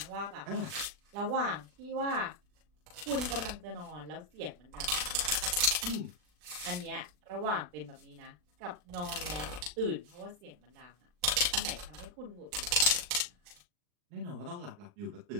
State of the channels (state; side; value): late; left; 40 ms